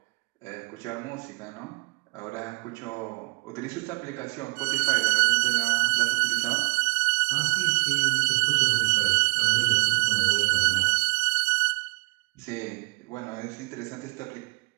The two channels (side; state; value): left; quieter; 30.2 dB